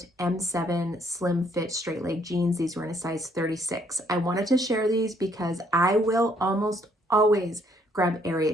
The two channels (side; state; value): both; normal; correlation 0.67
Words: M7 slim fit straight leg jeans. These were in a size 36. I wanted to share these because I will almost always grab